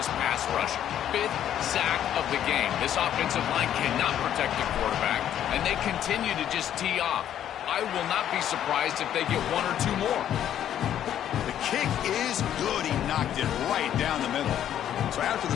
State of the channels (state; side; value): quieter; right; 10.6 dB